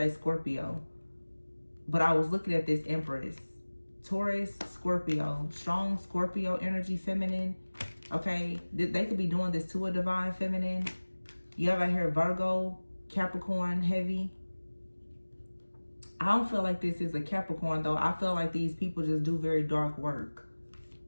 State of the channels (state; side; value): inverted; both; correlation -1.00